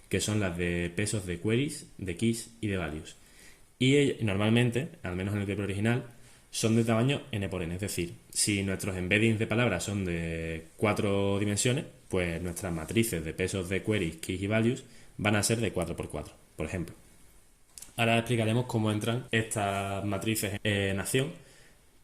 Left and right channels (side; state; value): both; identical; correlation 1.00